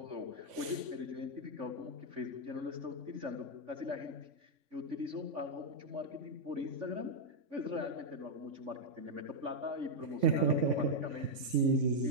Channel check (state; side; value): late; left; 3.5 ms